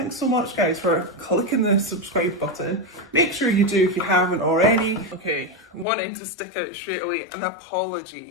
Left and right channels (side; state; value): right; drops out; at 5.9 s